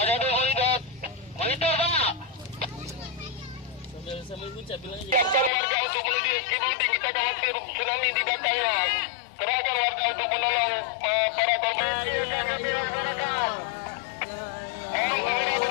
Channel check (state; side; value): drops out; right; at 5.5 s